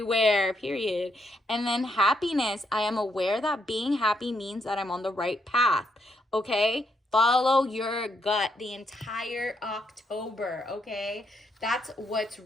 period. And then happiness. I am aware that being happy means that I'm on the right path. Okay? Follow your gut the entire October, okay? That's what's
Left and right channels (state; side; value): normal; both; correlation 0.76